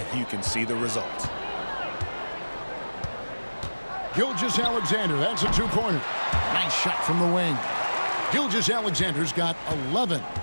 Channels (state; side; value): inverted; both; correlation -1.00